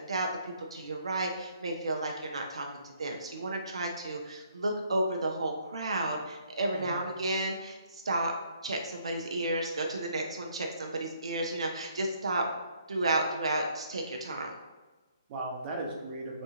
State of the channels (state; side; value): inverted; both; correlation -0.66